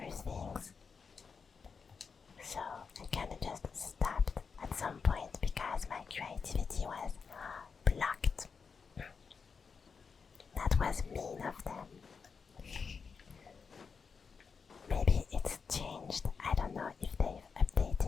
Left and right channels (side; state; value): right; quieter; 5.5 dB